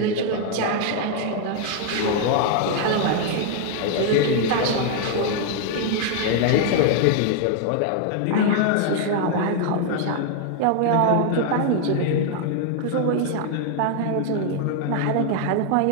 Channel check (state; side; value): different; both; correlation 0.00